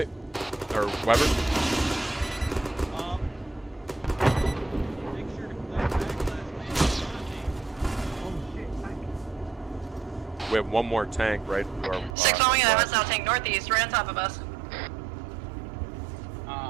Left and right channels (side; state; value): left; drops out; at 12.2 s